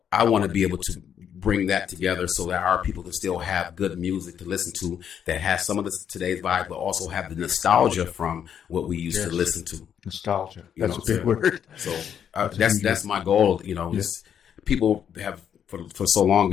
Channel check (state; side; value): quieter; right; 8.6 dB